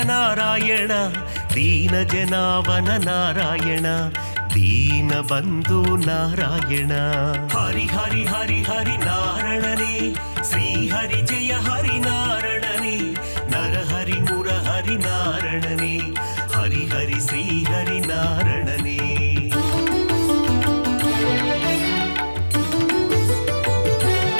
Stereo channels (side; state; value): both; inverted; correlation -1.00